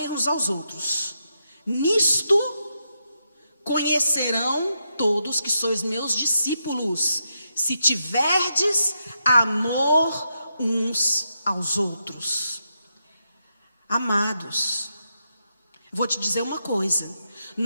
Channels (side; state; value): both; inverted; correlation -0.83